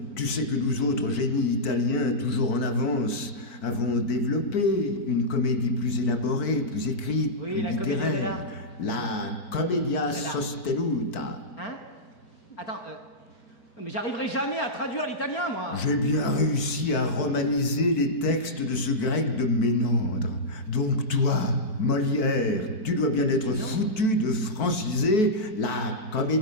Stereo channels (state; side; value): late; right; 4.6 ms